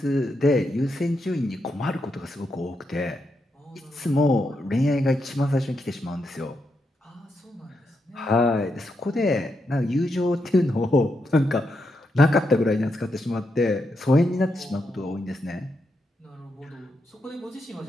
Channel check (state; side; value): normal; both; correlation 0.83